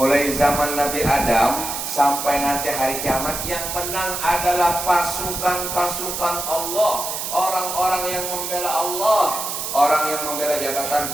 zaman Nabi Adam sampai nanti hari kiamat yang menang adalah pasukan-pasukan Allah. Orang-orang yang membela Allah. Orang yang membela jabatan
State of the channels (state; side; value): noise; right; hiss, 4 dB below the sound